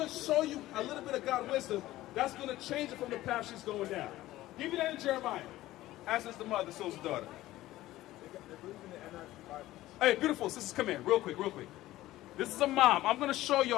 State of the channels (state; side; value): quieter; right; 16.0 dB